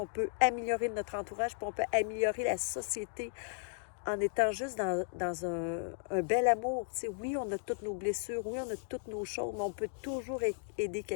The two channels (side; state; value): right; silent; digital silence